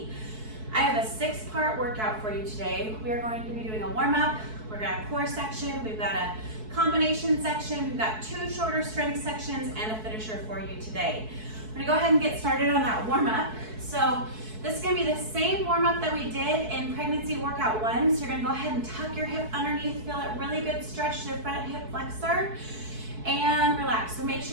I have a 6-part workout for you today. We are going to be doing a warm-up. We're going to have a core section. We've got a combination section. We've got 2 shorter strength sections and a finisher for you today. I'm going to go ahead and get started on that warm-up. So this is going to be the same warm-up that we did in pregnancy workout 1. So you're going to go ahead and tuck your hip underneath, feel a really good stretch to the front hip flexor, and relax. So make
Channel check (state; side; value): late; left; 4.6 ms